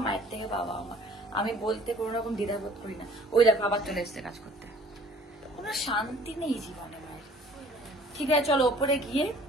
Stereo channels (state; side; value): normal; both; correlation 0.53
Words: মায়ের থেকে বাবা আমার। আমি বলতে কোনো রকম দ্বিধাবোধ করি না। ওই দেখো আবার চলে এসছে কাজ করতে, কোনো শান্তি নেই জীবনে মায়ের। ঠিক আছে চলো ওপরে গিয়ে